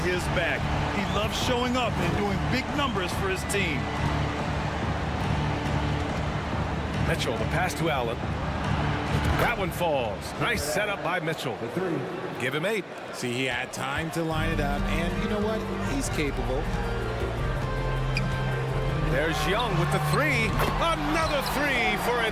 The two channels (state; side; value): identical; both; correlation 1.00